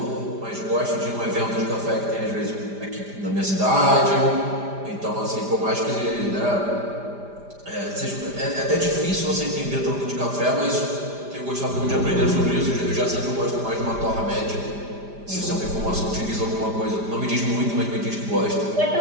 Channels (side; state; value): left; late; 5.0 ms